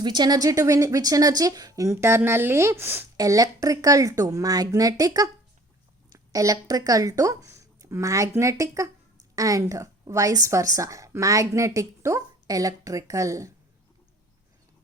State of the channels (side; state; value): both; normal; correlation 0.51